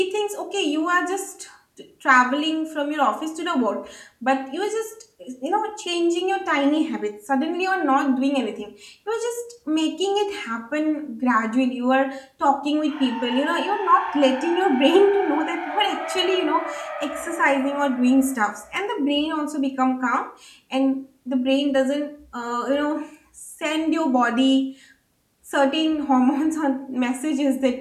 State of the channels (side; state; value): both; identical; correlation 1.00